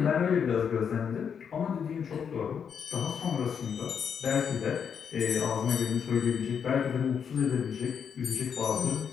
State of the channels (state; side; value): quieter; right; 7.2 dB